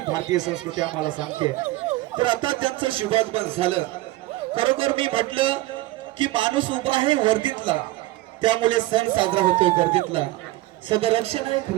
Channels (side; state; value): left; quieter; 17.9 dB